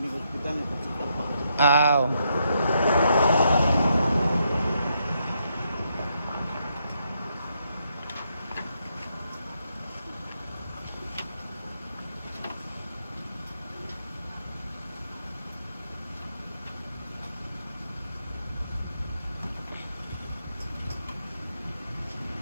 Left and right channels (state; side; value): inverted; both; correlation -0.78